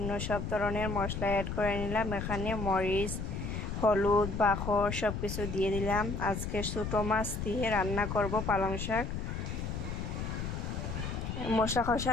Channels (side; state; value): left; noise; rumble, 4 dB below the sound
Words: সব ধরনের মশলা অ্যাড করে নিলাম। এখানে মরিচ, হলুদ, বাখর সব কিছু দিয়ে দিলাম। আজকে ছোটো মাছ দিয়ে রান্না করব পালং শাক। মশলা